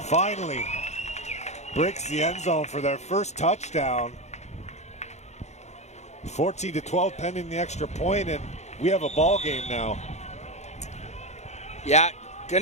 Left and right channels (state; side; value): late; right; 0.33 ms